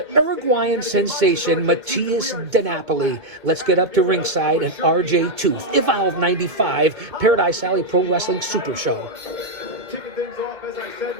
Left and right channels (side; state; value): left; late; 2.2 ms